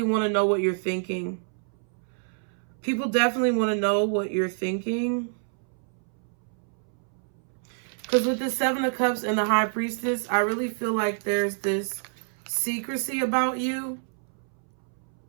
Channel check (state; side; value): silent; left; 60 dB below the other